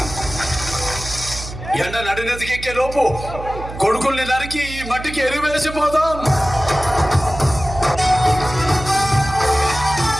ఎండ నడినెతికెక్కే లోపు కొడుకుల్ని నరికి ఈ మట్టికి ఎరివేసిపోదాం.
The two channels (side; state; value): right; noise; hum, 11 dB below the sound